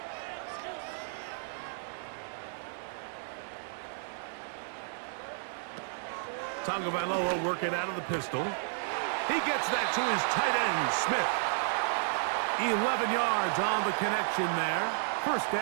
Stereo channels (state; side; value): silent; left; digital silence